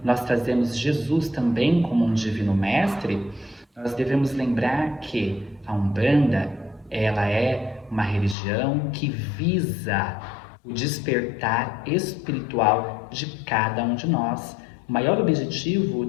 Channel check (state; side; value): drops out; right; at 8.3 s